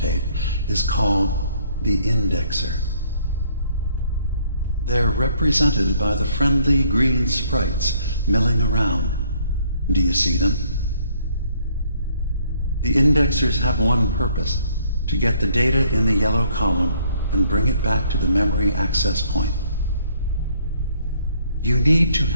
is called the indexer. They're represented by the friendly green sprites milling around. Do you see them? The indexers have one purpose: to get the data in the yellow column and bring it back to the memory access point. You need to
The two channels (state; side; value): inverted; both; correlation -0.64